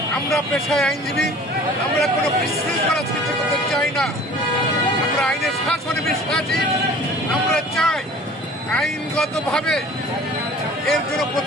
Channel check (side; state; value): both; normal; correlation 0.47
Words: আমরা পেশায় আইনজীবী, আমরা কোনো বিশৃঙ্খলা সৃষ্টি করতে চাই না। আমরা আইনের শাসনে বিশ্বাসী। আমরা চাই আইনগতভাবে এর জন্য